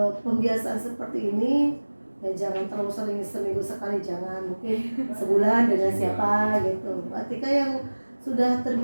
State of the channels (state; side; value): inverted; both; correlation -1.00